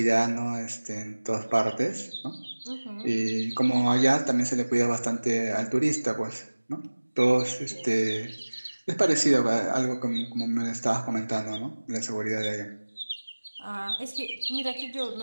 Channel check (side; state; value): both; inverted; correlation -1.00